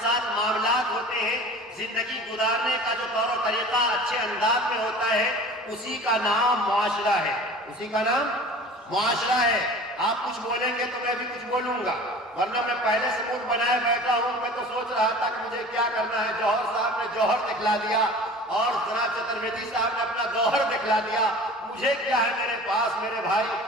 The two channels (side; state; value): both; normal; correlation 0.40